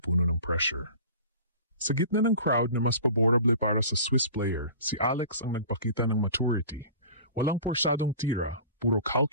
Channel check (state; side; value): inverted; both; correlation -0.41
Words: ng pressure. Sa gitna ng crowd na mas paborable para sa Swiss player, si Alex ang nagpakita ng maturity. Walang porsyadong tira, puro